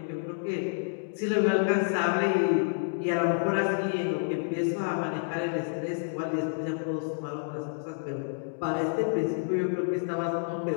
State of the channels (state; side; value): silent; right; digital silence